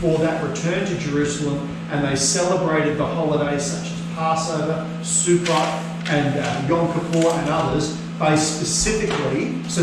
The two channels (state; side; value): identical; both; correlation 1.00